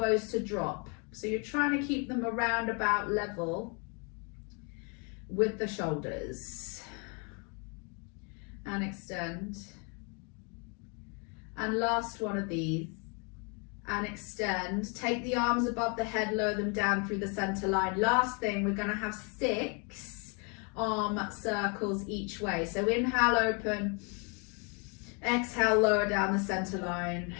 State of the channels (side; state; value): right; quieter; 35.0 dB